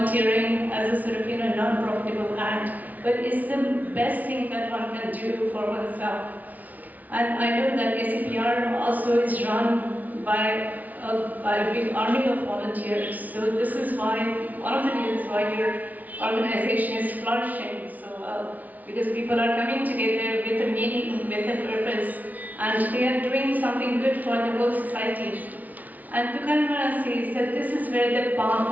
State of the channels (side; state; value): left; late; 0.076 ms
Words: as a sort of, non-profitable act, but it's the best thing that one can do for oneself. And I know that ACPR also is run by a big army of volunteers. So this is why, one of the reasons why your organization is flourishing so well, because people are coming together with a meaning, with a purpose, and they are doing something good for the whole society. And Tukaram Maharaj says that this is where the path